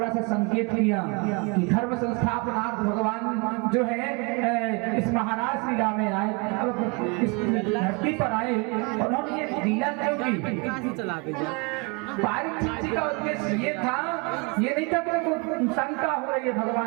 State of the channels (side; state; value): left; quieter; 30.2 dB